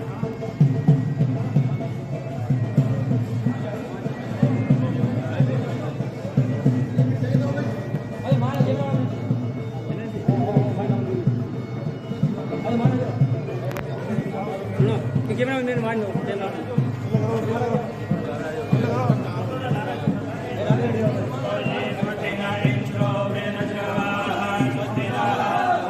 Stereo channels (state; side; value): identical; both; correlation 1.00